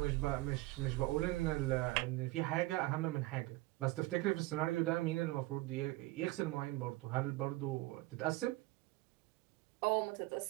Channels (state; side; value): quieter; left; 19.9 dB